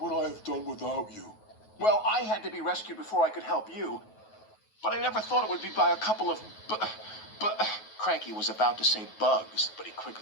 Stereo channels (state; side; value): late; right; 9.3 ms